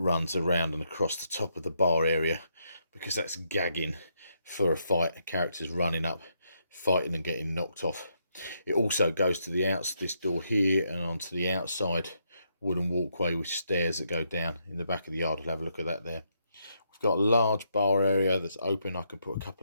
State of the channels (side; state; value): both; inverted; correlation -0.77